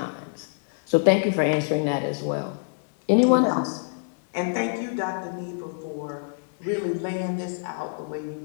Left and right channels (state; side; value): silent; right; digital silence